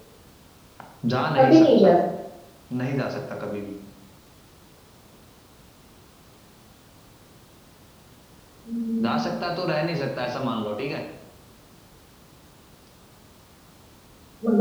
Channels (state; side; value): identical; both; correlation 1.00